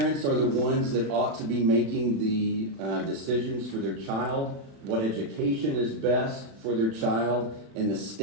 are the ones that ought to be making the decisions for their child, what education is best for their child, and the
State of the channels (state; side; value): late; left; 36 ms